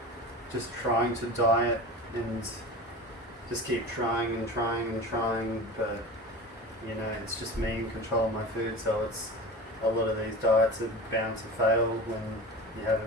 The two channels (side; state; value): both; normal; correlation 0.32